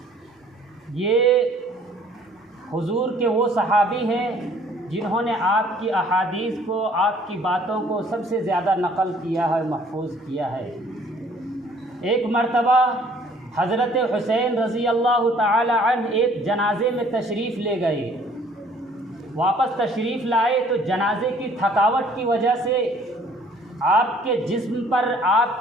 یہ حضور کے وہ صحابی ہیں جنہوں نے آپ کی احادیث کو، آپ کی باتوں کو سب سے زیادہ نقل کیا ہے، محفوظ کیا ہے۔ ایک مرتبہ حضرت حسین رضی اللہ تعالی عنہ ایک جنازے میں تشریف لے گئے، واپس تشریف لائے تو جنازے کی تھکاوٹ کی وجہ سے آپ کے جسم پر،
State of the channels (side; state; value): both; normal; correlation 0.57